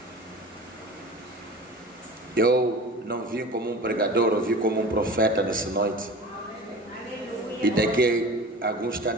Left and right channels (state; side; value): normal; both; correlation 0.37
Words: Eu não vim como um pregador, eu vim como um profeta nessa noite. E daqui a algum